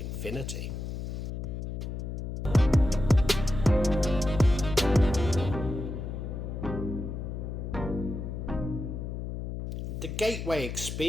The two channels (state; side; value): noise; left; hum, 5 dB below the sound